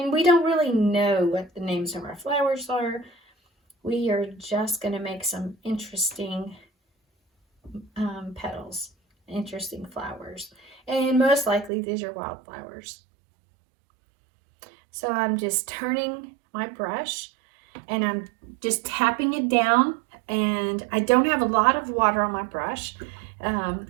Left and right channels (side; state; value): left; drops out; at 11.7 s